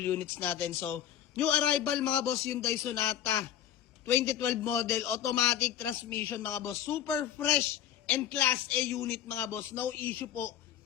units natin. So, new arrival mga boss, Hyundai Sonata 2012 model, automatic transmission mga boss. Super fresh and class A unit mga boss. No issue po.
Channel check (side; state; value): right; quieter; 10.6 dB